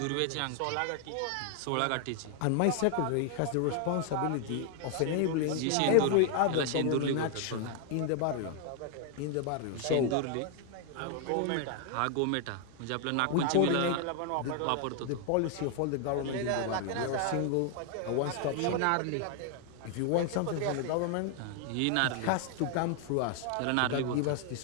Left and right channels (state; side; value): different; both; correlation 0.00